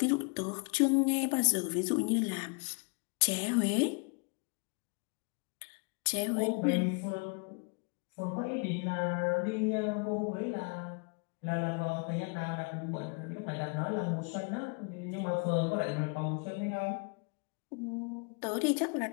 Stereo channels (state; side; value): quieter; right; 34.9 dB